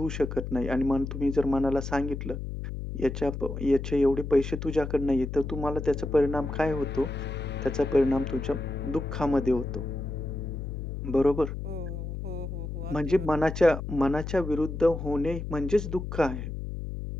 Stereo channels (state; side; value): noise; left; hum, 6 dB below the sound